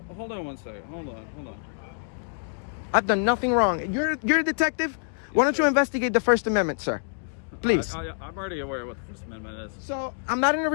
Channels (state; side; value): silent; right; digital silence